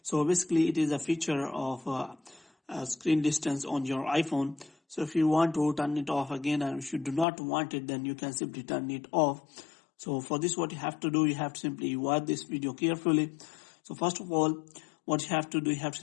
So basically it is a feature of screen distance on your iPhone. So if you want to turn it off again, and if you do not want it, then you can simply turn it off. So for this, what you have to do, you have to simply watch this video carefully. So first of all, what you have to do, you have to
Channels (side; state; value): right; drops out; at 7.2 s